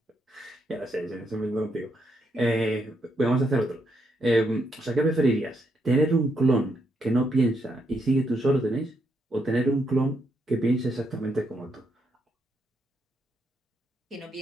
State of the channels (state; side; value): normal; both; correlation 0.78